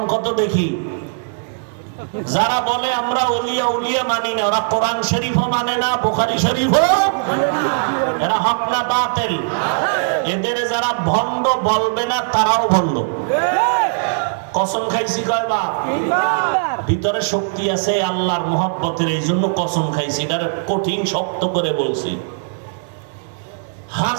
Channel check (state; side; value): silent; left; digital silence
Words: কত দেখি। যারা বলে আমরা ওলিয়া উলিয়া মানি না, ওরা কোরআন শরীফও মানে না, বুখারী শরীফও, এরা হক না বাতিল? এদের যারা ভণ্ড বলবে না তারাও ভণ্ড। কসম খাইছি কয়বার? ভিতরে শক্তি আছে আল্লাহর মহব্বতের, এই জন্য কসম খাইছি, এটার কঠিন শক্ত করে বলছি।